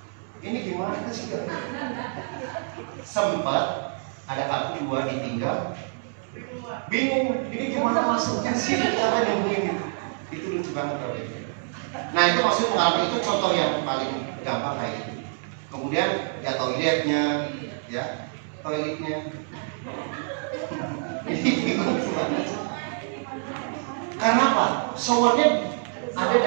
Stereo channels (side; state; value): left; silent; digital silence